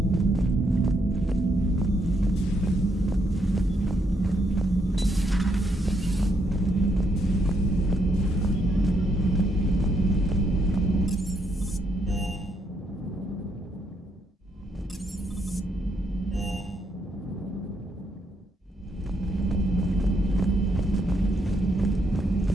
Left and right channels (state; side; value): normal; both; correlation 0.76